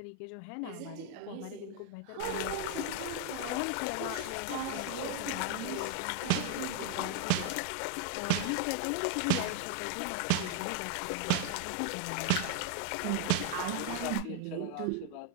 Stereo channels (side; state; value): both; different; correlation 0.00